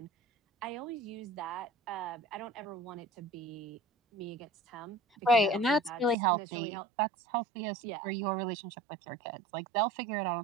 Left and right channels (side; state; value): left; drops out; at 6.2 s